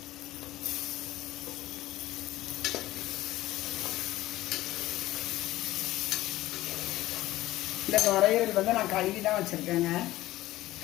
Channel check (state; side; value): quieter; right; 16.4 dB